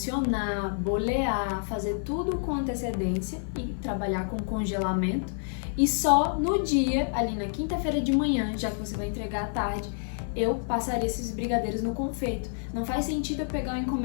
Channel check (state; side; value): silent; right; 59 dB below the other